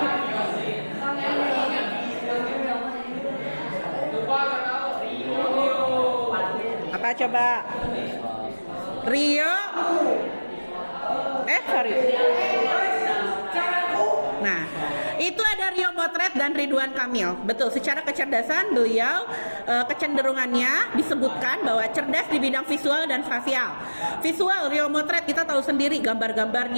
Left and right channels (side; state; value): both; inverted; correlation -1.00